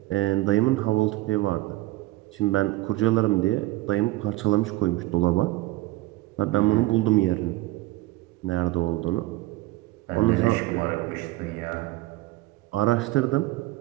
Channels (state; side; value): quieter; left; 18.4 dB